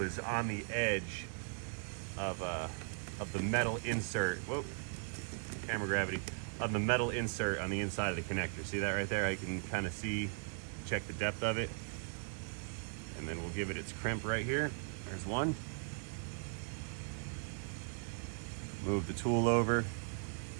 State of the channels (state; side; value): silent; left; 52 dB below the other